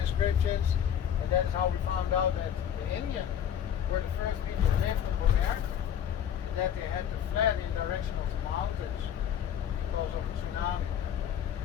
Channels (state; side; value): quieter; right; 9.3 dB